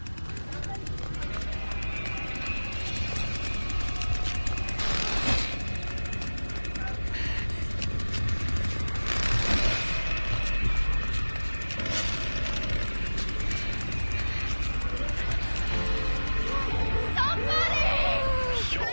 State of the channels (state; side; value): inverted; both; correlation -1.00